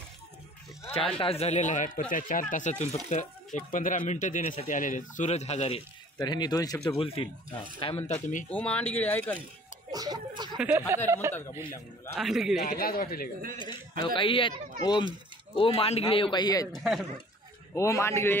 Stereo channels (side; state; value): both; normal; correlation 0.51